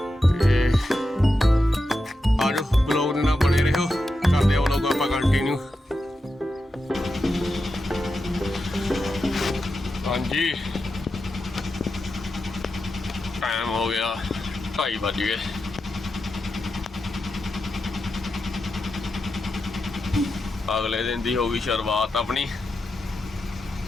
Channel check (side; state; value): both; normal; correlation 0.89